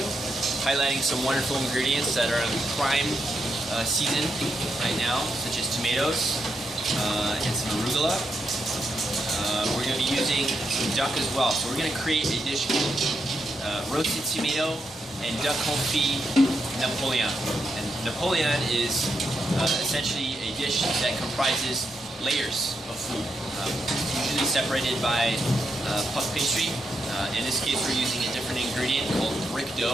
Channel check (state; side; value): normal; both; correlation 0.82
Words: highlighting some wonderful ingredients that are in prime season right now, such as tomatoes and some arugula. We're going to be using some duck as well. So we're going to create a dish called roasted tomato and duck confit Napoleon. And Napoleon is essentially a dish that comprises layers of food, usually separated by puff pastry. In this case, we're using a different ingredient called brick